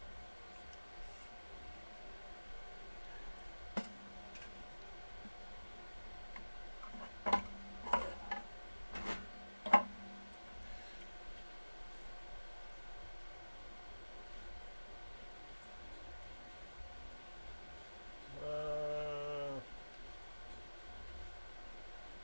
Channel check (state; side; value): inverted; both; correlation -1.00